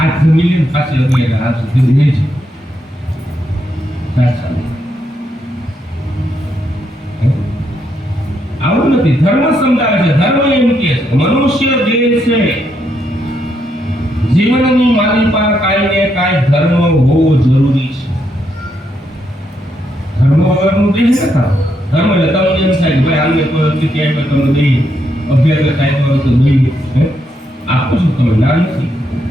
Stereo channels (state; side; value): normal; both; correlation 0.78